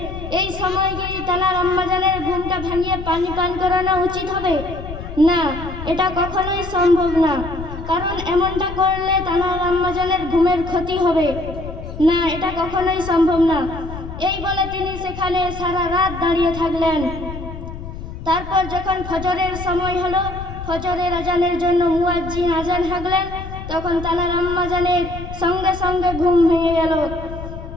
এই সময় কি তানার আম্মাজানের ঘুমটা ভাঙিয়ে পানি পান করানো উচিত হবে? না, এটা কখনোই সম্ভব না, কারণ এমনটা করলে তানার আম্মাজানের ঘুমের ক্ষতি হবে। না, এটা কখনোই সম্ভব না। এই বলে তিনি সেখানে সারা রাত দাঁড়িয়ে থাকলেন। তারপর যখন ফজরের সময় হলো, ফজরের আজানের জন্য মুয়াজ্জিন আজান হাঁকলেন, তখন তানার আম্মাজানের সঙ্গে সঙ্গে ঘুম ভেঙে গেল।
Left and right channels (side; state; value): left; noise; rumble, 10 dB below the sound